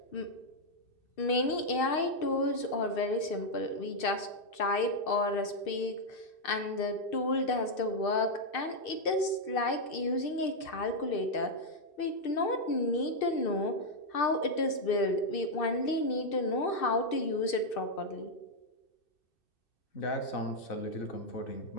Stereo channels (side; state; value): right; late; 2.6 ms